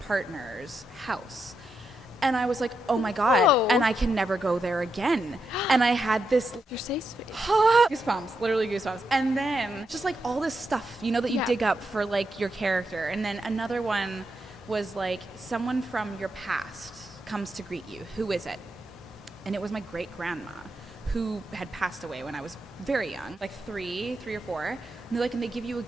house. And I was like, oh my God, Whoa. and I can never go there again. And I had this Your safe space. goosebumps, literally goosebumps. And then just like all this stuff, that you dig up for like your character. And then another one was like someone from your past comes to greet you. Who is it? And it was my great grandma who had passed away when I was very young, like three or four. And they're like, and they give you a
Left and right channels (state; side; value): normal; both; correlation 0.84